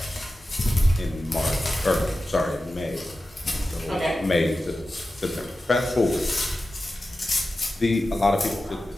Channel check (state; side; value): normal; both; correlation 0.93